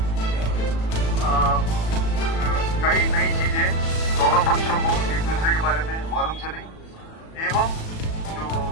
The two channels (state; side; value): late; right; 37 ms